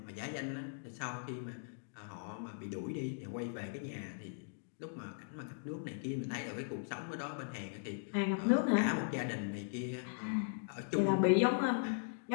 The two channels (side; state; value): right; silent; digital silence